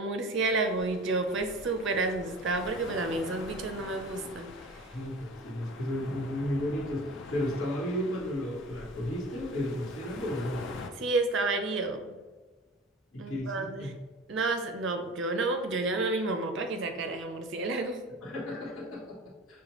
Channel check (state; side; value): normal; both; correlation 0.39